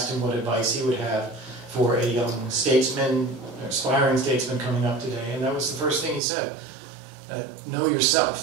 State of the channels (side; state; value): left; drops out; at 6.2 s